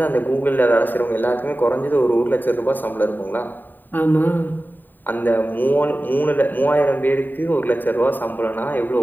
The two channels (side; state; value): right; late; 0.091 ms